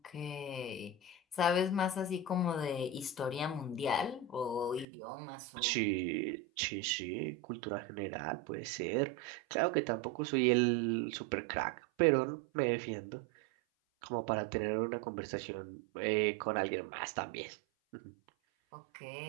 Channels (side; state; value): left; drops out; at 4.9 s